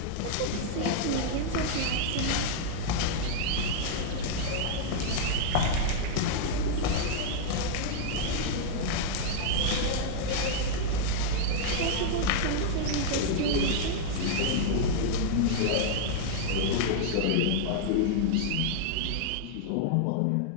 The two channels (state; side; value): different; both; correlation -0.01